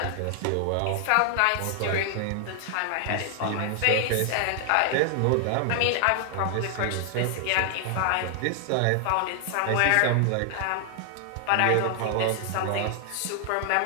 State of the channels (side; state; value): both; different; correlation 0.00